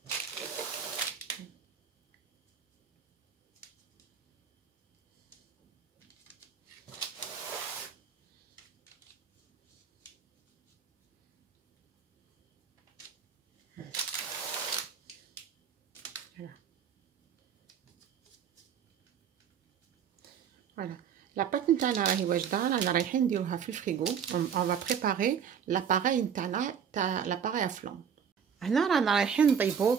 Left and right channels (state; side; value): quieter; left; 7.6 dB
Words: فوالا لا بات نتاعنا راهي واجده، رانا رايحين نديروها في الفريغو. اون فا بريباري لاباراي نتاعنا تاع لاباراي افلون. هنا رانا رايحين نطيبو